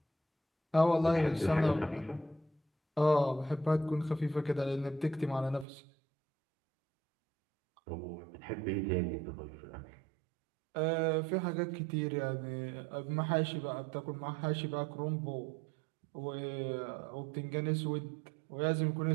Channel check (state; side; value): drops out; left; at 5.7 s